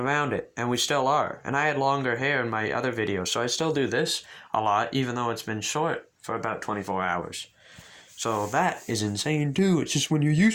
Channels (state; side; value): identical; both; correlation 1.00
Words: it, and we still are. And I had longer hair in my other videos, so I still do this a lot, even though it's been short for about 24 hours. So that is insane too. It's just when you're